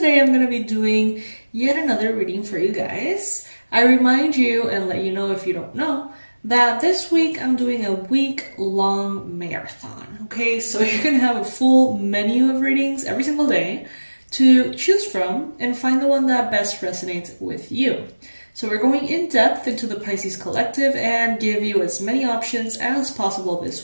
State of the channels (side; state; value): both; inverted; correlation -1.00